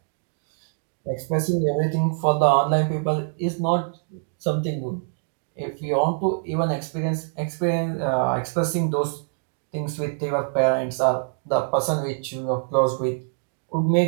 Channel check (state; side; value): silent; left; digital silence